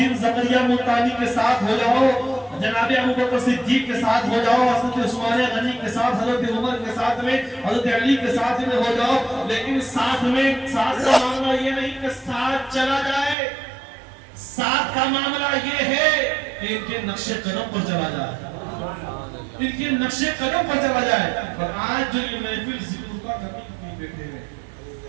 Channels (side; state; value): left; drops out; at 13.4 s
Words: زکریا ملتانی کے ساتھ ہو جاؤ, جناب ابوبکر صدیق کے ساتھ ہو جاؤ, حضرت عثمان غنی کے ساتھ, حضرت عمر کے ساتھ میں, حضرت علی کے ساتھ میں ہو جاؤ. لیکن ساتھ میں ساتھ کا معاملہ یہ نہیں کہ ساتھ چلا جائے, ساتھ کا معاملہ یہ ہے کہ ان کے نقش قدم پر چلا جائے, ان کے نقش قدم پر چلا جائے. اور آج جو یہ محفل ذکر کا کرنے کے لیے بیٹھے ہوئے,